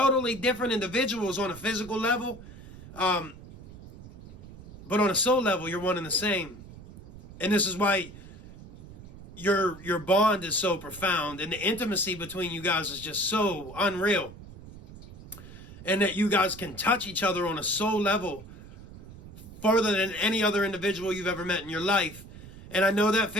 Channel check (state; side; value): noise; right; rumble, 17 dB below the sound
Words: different individuals on a physical level, but on a soul level, you're one and the same. And this is why your bond is so profound, and the intimacy between you guys is just so unreal. And that you guys can touch each other on a soul level farther than any other individual you've ever met in your life. And I know that